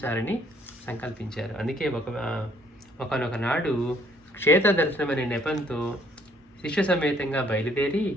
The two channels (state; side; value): normal; both; correlation 0.64